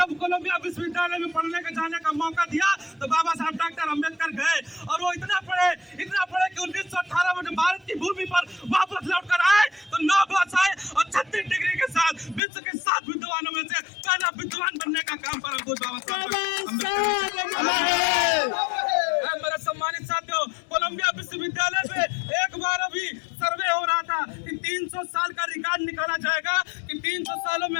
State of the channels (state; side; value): drops out; right; at 12.4 s